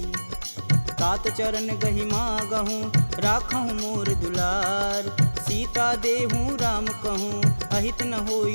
तात चरण गहि मागहूँ राखहूँ मोर दुलार सीता देहूँ राम कहूँ अहित न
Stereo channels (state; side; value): inverted; both; correlation -1.00